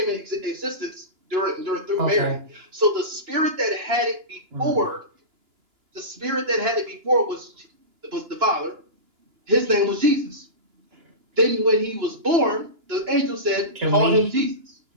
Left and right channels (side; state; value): left; late; 2.9 ms